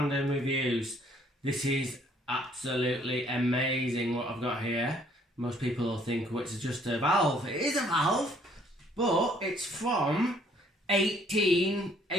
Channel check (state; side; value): normal; both; correlation 0.62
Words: Reviews. This is absolutely amazing what I've got here. Most people will think, well, it's just a valve. It is a valve, but it's from